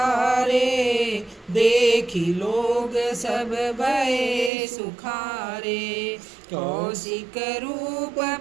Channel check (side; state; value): left; drops out; at 4.5 s